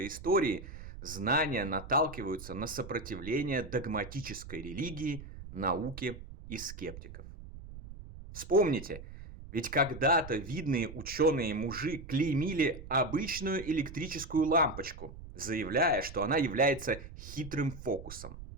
истории, знания наталкиваются на сопротивление догматической религии, науки и скептиков. Вспомните, ведь когда-то видные ученые-мужи клеймили обычную электрическую лампочку, заявляя, что она является хитрым фокусом.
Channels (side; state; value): right; noise; rumble, 13 dB below the sound